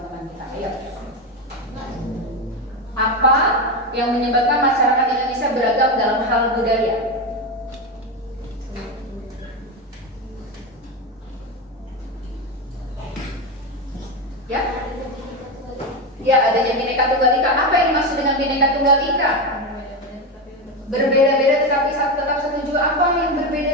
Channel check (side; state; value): both; normal; correlation 0.14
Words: kita. Ayo. Apa yang menyebabkan masyarakat Indonesia beragam dalam hal budaya? Ya? Ya, adanya Bhinneka Tunggal Ika. Apa yang dimaksud dengan Bhinneka Tunggal Ika? Berbeda-beda tetapi tetap satu jua. Apa yang